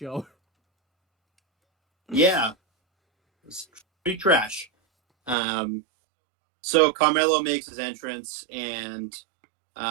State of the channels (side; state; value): left; drops out; at 5.4 s